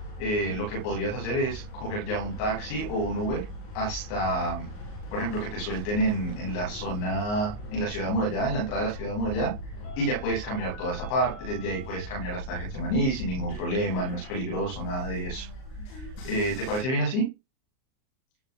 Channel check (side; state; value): right; late; 38 ms